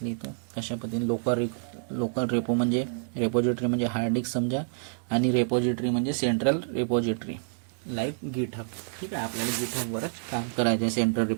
लिहितो. कशा पद्धतीने लोकल रेपो म्हणजे रेपोजिटरी म्हणजे हार्ड डिस्क समजा, आणि रेपोजिटरी म्हणजे सेंट्रल रेपोजिटरी लाईक गिटहब. ठीक आहे, आपल्याला गिटहबवरच काम करायचं आहे, सेंट्रल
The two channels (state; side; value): silent; left; digital silence